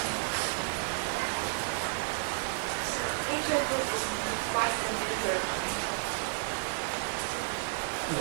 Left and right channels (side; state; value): left; silent; digital silence